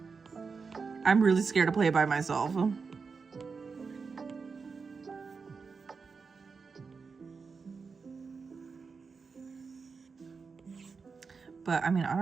I'm really scared to play it by myself. But I mean, I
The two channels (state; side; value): quieter; left; 5.0 dB